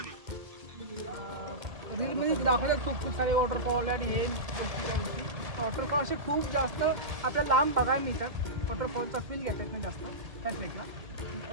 रीलमध्ये दाखवतात खूप सारे वॉटरफॉल आणि हे गोष्टी त्या गोष्टी. वॉटरफॉल असे खूप जास्त आपल्याला लांब बघायला मिळतात. वॉटरफॉलचा फील घेता येत नाही जास्त त्या ट्रेकला.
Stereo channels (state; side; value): late; left; 2.1 ms